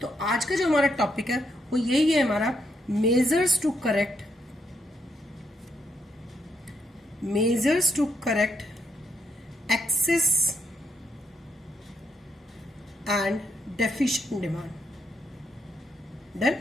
तो आज का जो हमारा टॉपिक है वो यही है हमारा measures to correct excess and deficient demand. Done?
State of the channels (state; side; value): normal; both; correlation 0.77